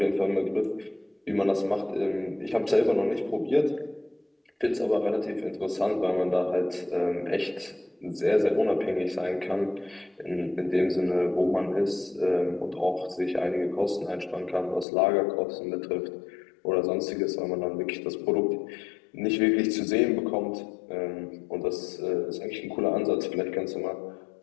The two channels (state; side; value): drops out; right; at 14.9 s